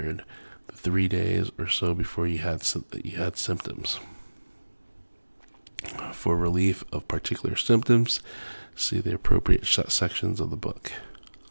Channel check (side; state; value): both; inverted; correlation -1.00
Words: the 3 days or so before you had symptoms. For relief of particular symptoms, see the appropriate sections of the book.